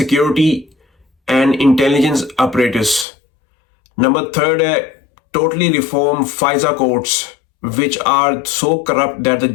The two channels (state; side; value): drops out; right; at 3.1 s